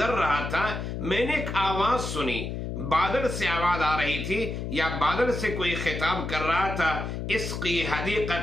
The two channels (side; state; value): left; noise; hum, 5 dB below the sound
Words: رہا تھا، میں نے ایک آواز سنی، بادل سے آواز آ رہی تھی، یا بادل سے کوئی خطاب کر رہا تھا، اسقی